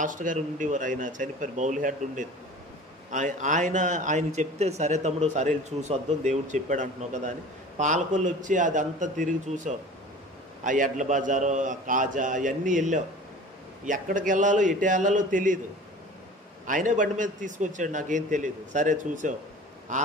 గారు ఉండేవారు, ఆయన చనిపోయారు, బౌల్ హెడ్ ఉండేది. ఆయన చెప్తే సరే తమ్ముడు సరే చూసి వద్దాం దేవుడు చెప్పాడు అంటున్నావు కదా అని పాలకొల్లు వచ్చి అదంతా తిరిగి చూసాం. ఆ ఎడ్ల బజారు, ఆ కాజా అవన్నీ వెళ్ళాం. ఎక్కడికి వెళ్ళాలో ఎటు వెళ్ళాలో తెలియదు, ఆయనే బండి మీద తీసుకొచ్చాడు, నాకేం తెలియదు. సరే చూసాం. ఆ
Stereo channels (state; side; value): normal; both; correlation 0.41